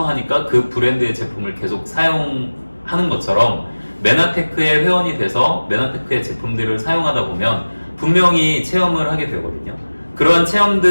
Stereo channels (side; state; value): both; inverted; correlation -1.00